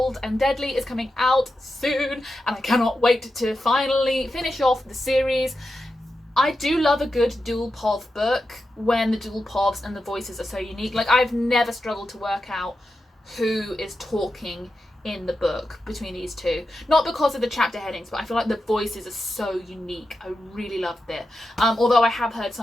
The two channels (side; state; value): both; normal; correlation 0.89